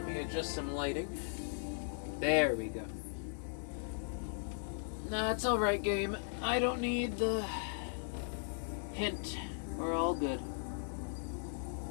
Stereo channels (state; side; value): silent; right; digital silence